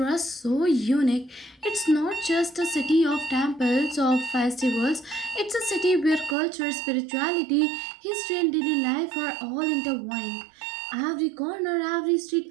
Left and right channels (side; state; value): left; drops out; at 6.4 s